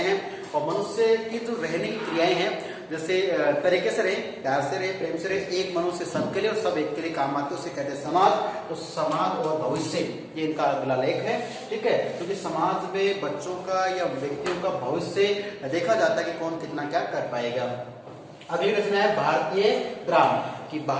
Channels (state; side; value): identical; both; correlation 1.00